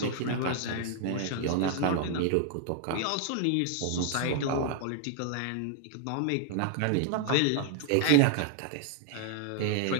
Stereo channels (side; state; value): both; different; correlation 0.00